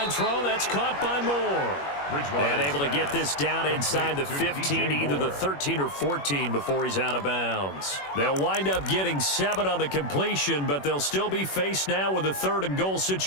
throw, that's caught by Moore. And able to get this down inside the 15, either the 13 or 14 before he's out of bounds. They'll wind up getting 7 on the completion, but they'll still be faced now with a 3rd and goal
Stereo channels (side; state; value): right; late; 21 ms